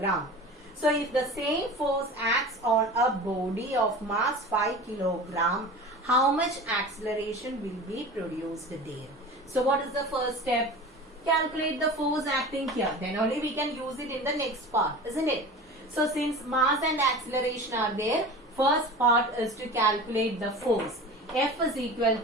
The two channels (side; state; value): both; normal; correlation 0.35